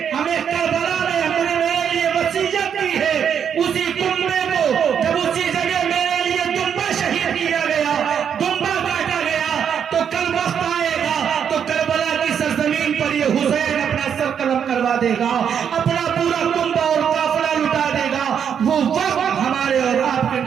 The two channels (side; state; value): left; quieter; 7.9 dB